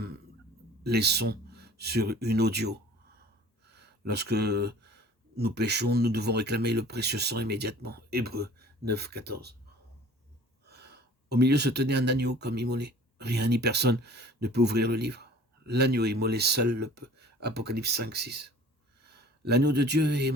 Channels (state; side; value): normal; both; correlation 0.47